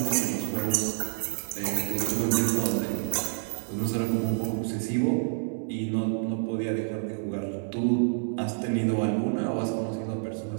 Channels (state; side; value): silent; left; 59 dB below the other